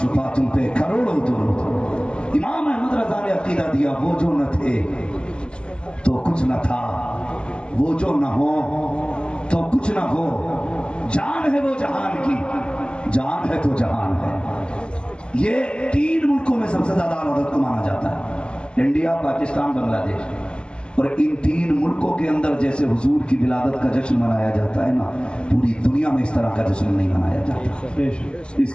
تم پہ کروڑوں درود۔ امام احمد رضا نے عقیدہ دیا، وہ جو نہ تھے تو کچھ نہ تھا، وہ جو نہ ہو تو کچھ نہ ہو، جان ہے وہ جہان کی، جان ہے تو جہان ہے۔ یہ 3 ملکوں میں سب سے زیادہ اعلیٰ حضرت کو مانا جاتا ہے، انڈیا، پاکستان، بنگلہ دیش۔ اور ان 3 ملکوں کے اندر جیسے حضور کی ولادت کا جشن منایا جاتا ہے نا، پوری دنیا میں اس طرح کا جشن نہیں منایا جاتا۔ اس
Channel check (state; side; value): late; right; 0.051 ms